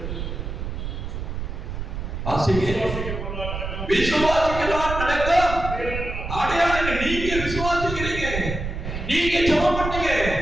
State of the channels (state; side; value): noise; right; rumble, 5 dB below the sound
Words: விசுவாசிகளால் நடக்கும் அடையாளங்கள். நீங்க விசுவாசிக்கிறீங்க, நீங்க ஜெபம் பண்ணுங்க,